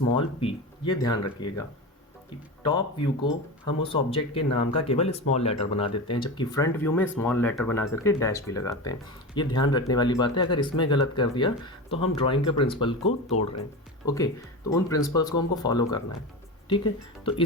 p। ये ध्यान रखिएगा कि टॉप व्यू को हम उस ऑब्जेक्ट के नाम का केवल स्मॉल लेटर बना देते हैं, जबकि फ्रंट व्यू में स्मॉल लेटर बना करके डैश भी लगाते हैं। ये ध्यान रखने वाली बात है, अगर इसमें गलत कर दिया तो हम ड्राइंग के प्रिंसिपल को तोड़ रहे हैं। ओके, तो उन प्रिंसिपल्स को हमको फॉलो करना है, ठीक है। तो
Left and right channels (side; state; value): both; normal; correlation 0.24